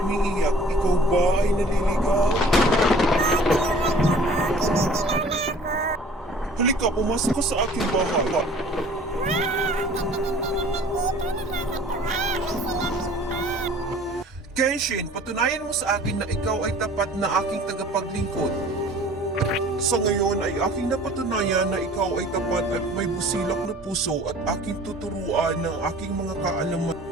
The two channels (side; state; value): both; normal; correlation 0.49